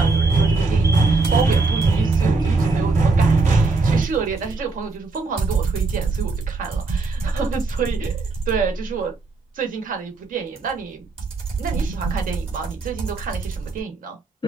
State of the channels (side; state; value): left; quieter; 3.8 dB